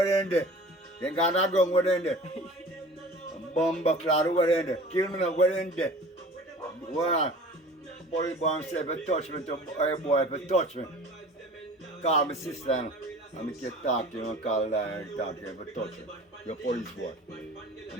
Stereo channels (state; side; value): normal; both; correlation 0.42